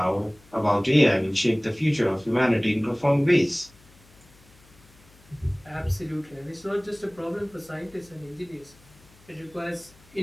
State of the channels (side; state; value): left; noise; hum, 27 dB below the sound